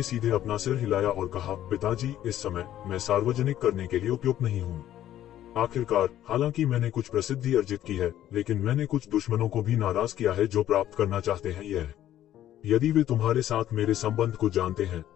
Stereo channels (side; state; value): right; quieter; 12.4 dB